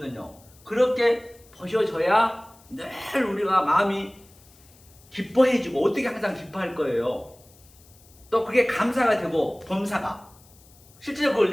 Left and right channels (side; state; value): left; noise; hiss, 27 dB below the sound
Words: 그렇게 보셔져야 늘 우리가 마음이 기뻐해지고, 어떻게 항상 기뻐할 거예요. 또 그게 감사가 되고 범사가 실제적으로 그걸